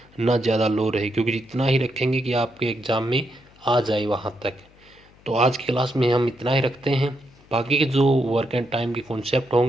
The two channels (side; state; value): left; noise; hum, 28 dB below the sound